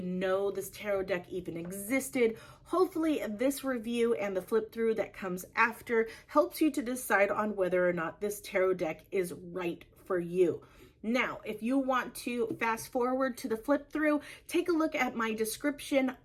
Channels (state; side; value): identical; both; correlation 1.00